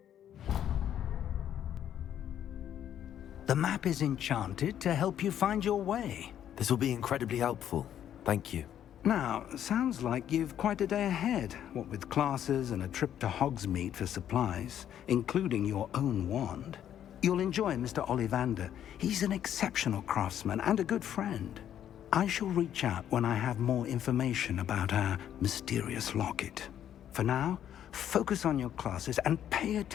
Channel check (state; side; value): quieter; right; 10.3 dB